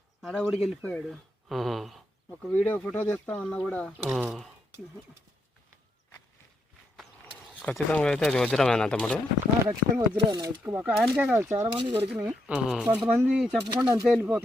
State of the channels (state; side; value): normal; both; correlation 0.79